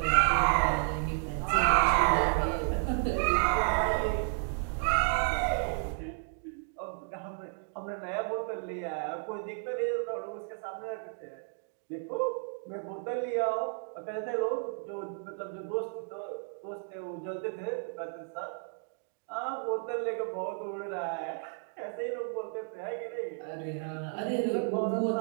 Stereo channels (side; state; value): left; silent; 56 dB below the other